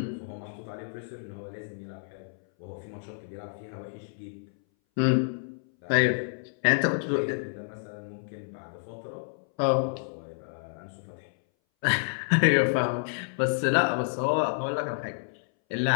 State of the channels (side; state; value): right; silent; 58 dB below the other